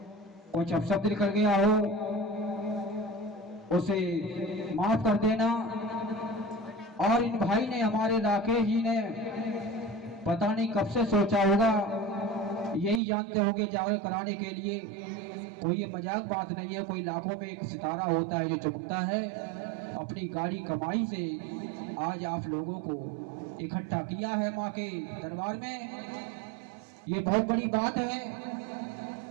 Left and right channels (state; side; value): drops out; left; at 13.0 s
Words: कुछ अपशब्द निकल गया हो, उसे माफ कर देना। और इन भाई ने, हमारे राकेश जी ने पता नहीं कब से सोचा होगा, यही जानते होंगे जागरण कराने के लिए। कोई ये मजाक बात नहीं है, कोई लाखों में एक सितारा होता है जो चमकता है। अपनी गाड़ी कमाई से आज आप लोगों को इकट्ठा किया है माँ के दरबार में, ये बहुत बड़ी बात है।